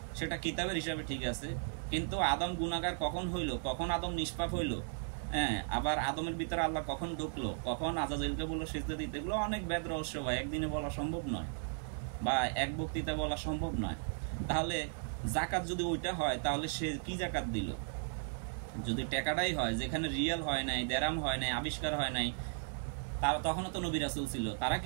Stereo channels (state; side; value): silent; left; digital silence